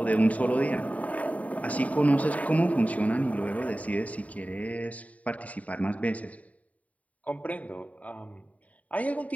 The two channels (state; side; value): late; right; 0.070 ms